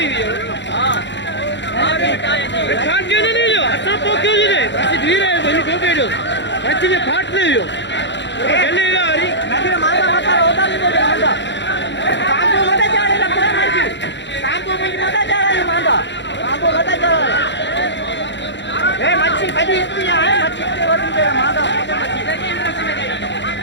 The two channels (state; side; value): late; right; 0.52 ms